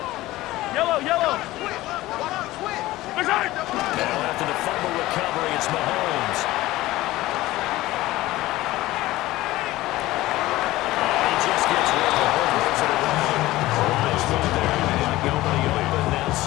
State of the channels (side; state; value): right; quieter; 17.4 dB